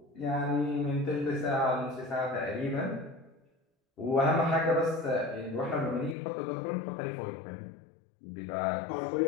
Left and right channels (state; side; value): drops out; right; at 6.2 s